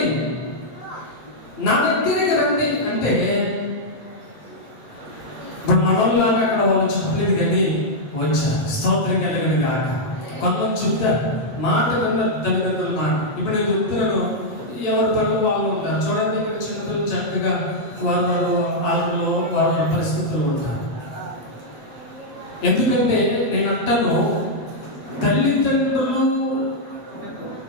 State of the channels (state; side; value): late; right; 8.5 ms